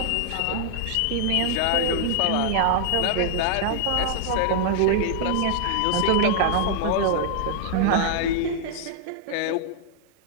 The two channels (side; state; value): both; different; correlation 0.00